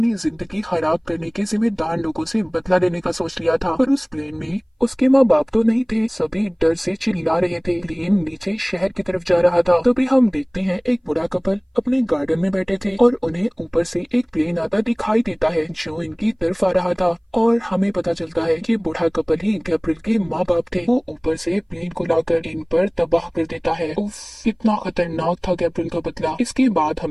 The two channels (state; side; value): identical; both; correlation 1.00